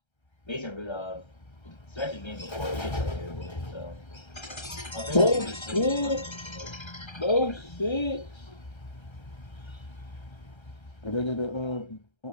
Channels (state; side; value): late; right; 1.3 ms